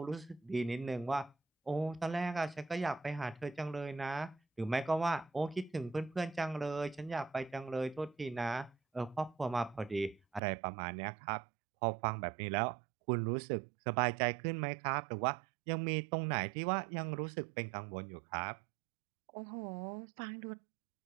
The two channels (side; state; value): left; drops out; at 10.4 s